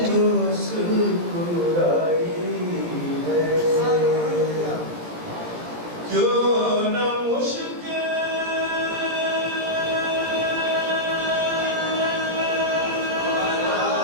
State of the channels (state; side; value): late; left; 17 ms